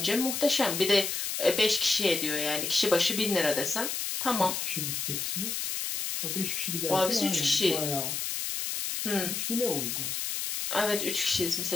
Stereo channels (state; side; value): noise; left; hiss, 2 dB below the sound